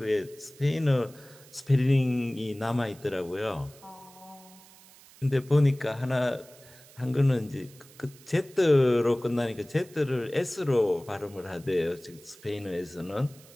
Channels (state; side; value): noise; right; hiss, 23 dB below the sound